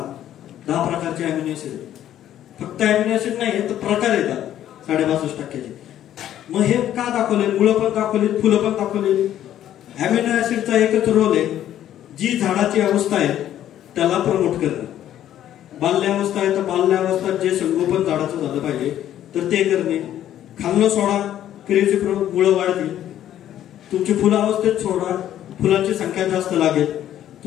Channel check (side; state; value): right; quieter; 11.6 dB